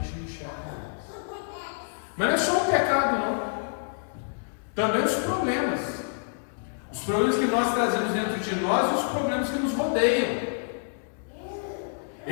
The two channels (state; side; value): silent; right; digital silence